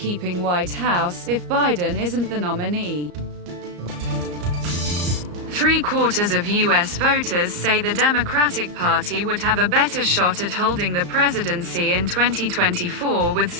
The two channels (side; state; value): left; late; 34 ms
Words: White House if Biden isn't the nominee. 3/4 of U.S. voters say the Democratic Party would have a better shot at holding the presidency in 2024 with